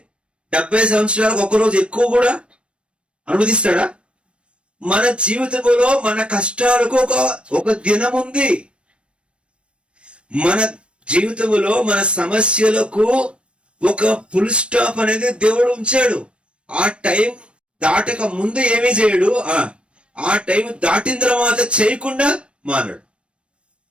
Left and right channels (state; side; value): late; left; 0.058 ms